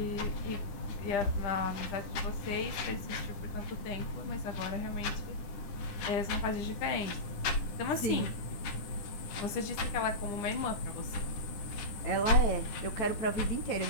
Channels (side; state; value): right; late; 9.9 ms